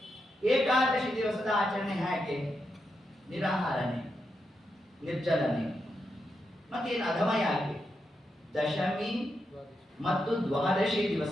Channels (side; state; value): both; normal; correlation 0.85